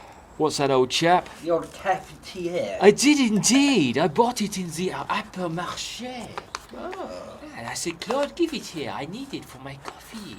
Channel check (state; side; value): identical; both; correlation 1.00